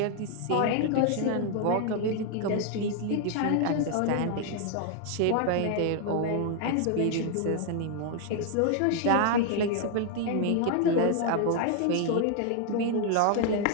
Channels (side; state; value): both; different; correlation 0.00